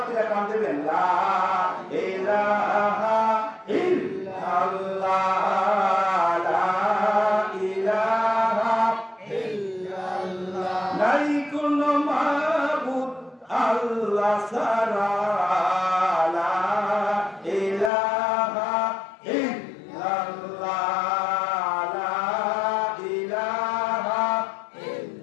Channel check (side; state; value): right; drops out; at 17.9 s